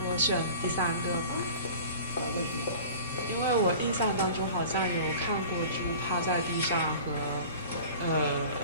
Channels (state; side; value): inverted; both; correlation -0.41